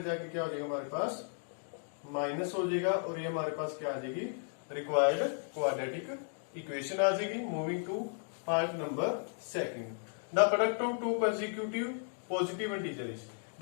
जाके क्या हो जाएगा हमारे पास? माइनस हो जाएगा. और ये हमारे पास क्या आ जाएगी? रिक्वायर्ड क्वाड्रेटिक इक्वेशन आ जाएगी. Moving to part number second. The product of two consecutive positive integers.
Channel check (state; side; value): silent; right; 55 dB below the other